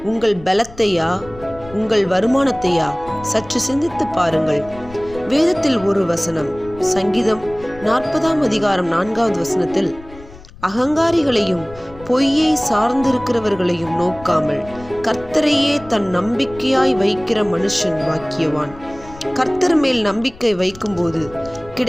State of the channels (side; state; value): left; noise; rumble, 19 dB below the sound